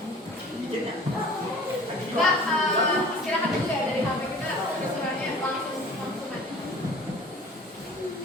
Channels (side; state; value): both; normal; correlation 0.46